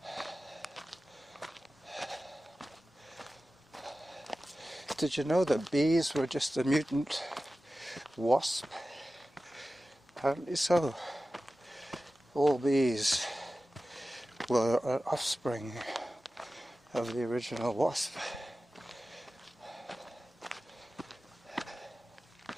Did you know that bees were just a mutant wasp? Apparently so. All bees were an offspring of the original wasp.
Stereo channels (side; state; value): both; normal; correlation 0.95